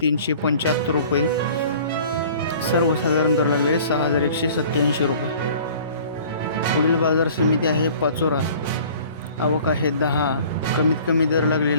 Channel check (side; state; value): both; inverted; correlation -0.48